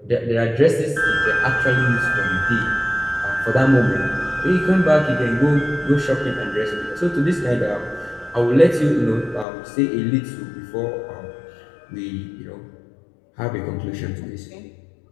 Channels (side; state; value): right; drops out; at 9.5 s